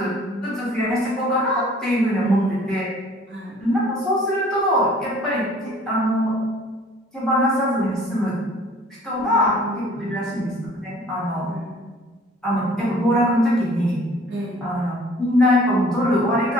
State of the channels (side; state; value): both; normal; correlation 0.52